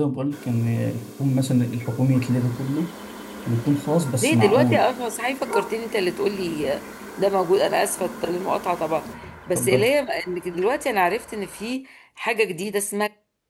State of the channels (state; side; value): identical; both; correlation 1.00